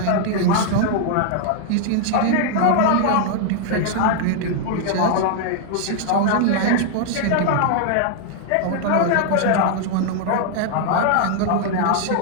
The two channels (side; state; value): both; different; correlation 0.00